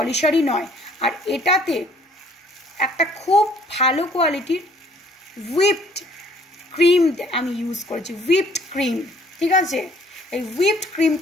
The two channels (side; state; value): both; normal; correlation 0.59